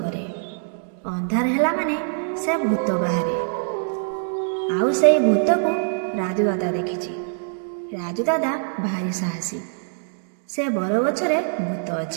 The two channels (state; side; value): silent; left; digital silence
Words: अंधार हेला माने से भूत बाहरे। आउ से भूत को राजू दादा देखिछि। राजू दादा भारी साहसी। से बर गछरे भूत